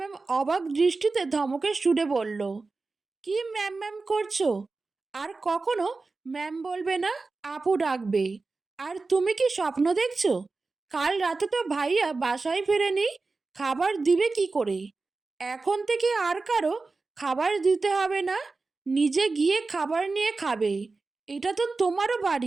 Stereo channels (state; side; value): quieter; left; 3.8 dB